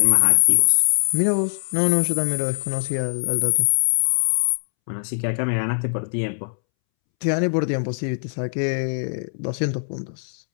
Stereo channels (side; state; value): right; silent; 64 dB below the other